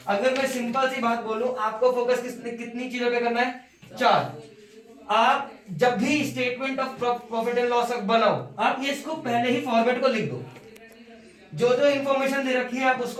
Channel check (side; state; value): both; identical; correlation 1.00